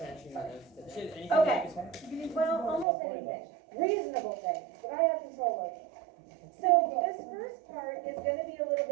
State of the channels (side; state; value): left; drops out; at 2.9 s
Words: Okay. make us happy? Well, almost About 40 anything, reasonable things that I have control over. So this first part is gonna be a little